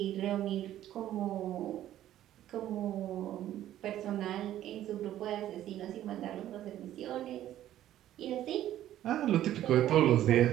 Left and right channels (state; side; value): quieter; left; 12.6 dB